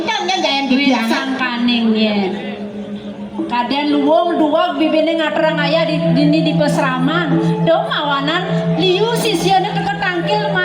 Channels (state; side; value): identical; both; correlation 1.00